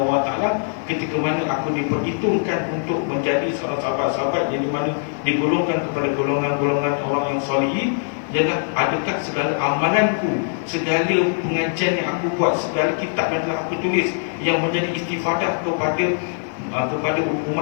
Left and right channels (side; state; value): right; silent; digital silence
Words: wa taala ketika mana aku diperhitungkan untuk menjadi seorang sahabat-sahabat yang dimana digolongkan kepada golongan-golongan orang yang solihin, ialah adakah segala amalanku, segala pengajian yang aku buat, segala kitab yang telah aku tulis yang menjadi istifadah kepada